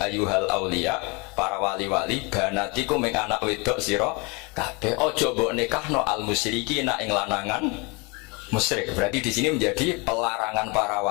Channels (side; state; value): right; quieter; 29.1 dB